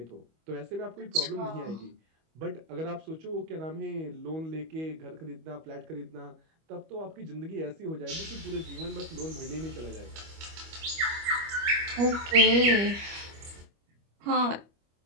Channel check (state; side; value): late; left; 25 ms